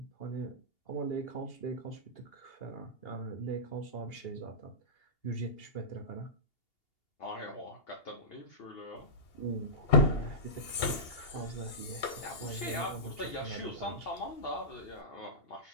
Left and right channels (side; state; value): right; late; 2.8 ms